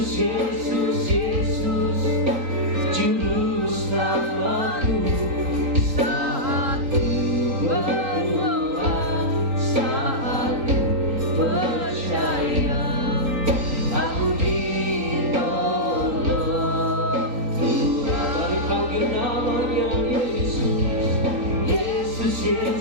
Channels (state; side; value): late; left; 3.9 ms